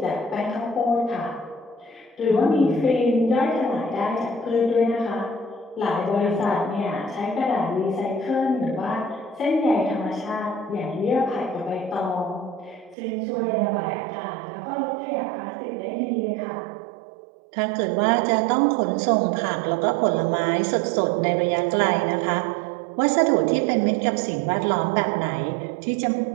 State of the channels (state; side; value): drops out; left; at 13.0 s